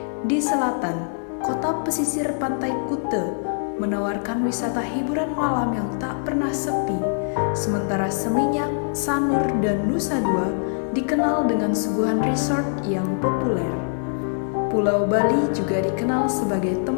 Di selatan, kota pesisir Pantai Kuta menawarkan wisata hiburan malam yang tak pernah sepi, sementara Seminyak, Sanur, dan Nusa Dua dikenal dengan suguhan resort yang populer. Pulau Bali juga dikenal sebagai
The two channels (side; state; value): right; silent; digital silence